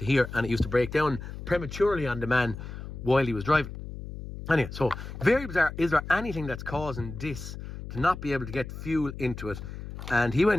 here, and it used to break down prematurely on the man while he was driving. Anyway, so very bizarre. Is there anything that's causing this to not be able to get fuel into it? And he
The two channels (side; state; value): left; noise; hum, 10 dB below the sound